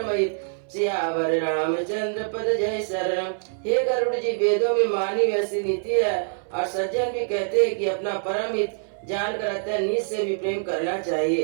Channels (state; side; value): silent; left; 60 dB below the other